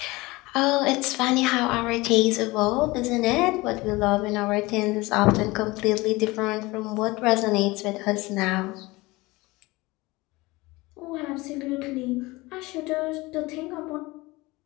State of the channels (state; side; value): quieter; right; 21.9 dB